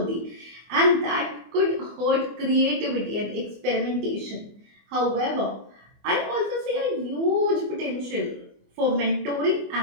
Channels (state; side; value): late; left; 24 ms